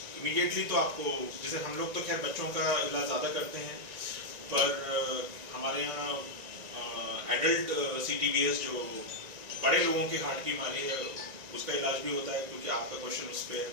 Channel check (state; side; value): late; left; 1.9 ms